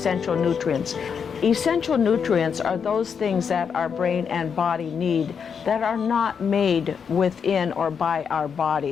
nutrients. Essential nutrients are those things that our brain and body need that are not made within or by our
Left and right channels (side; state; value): right; quieter; 6.7 dB